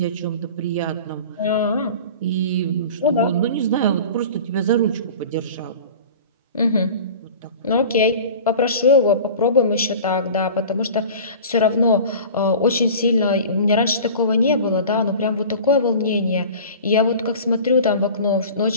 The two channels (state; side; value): inverted; both; correlation -0.39